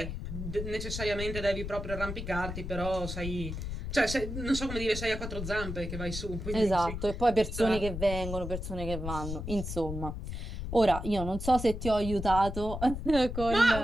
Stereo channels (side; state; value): left; noise; rumble, 6 dB below the sound